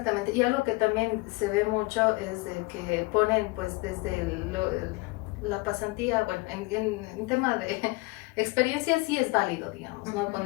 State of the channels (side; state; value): right; quieter; 24.3 dB